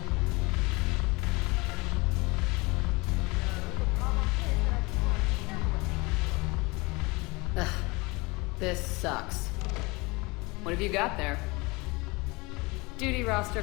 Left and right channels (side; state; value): right; quieter; 25.2 dB